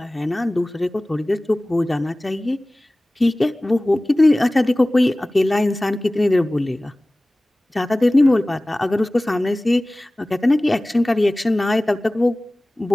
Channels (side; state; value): both; normal; correlation 0.98